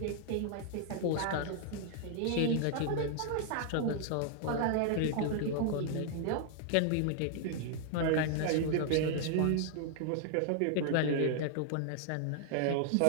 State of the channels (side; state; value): both; different; correlation 0.00